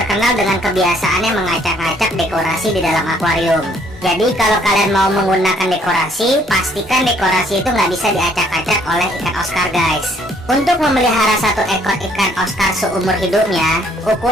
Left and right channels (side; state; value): both; normal; correlation 0.64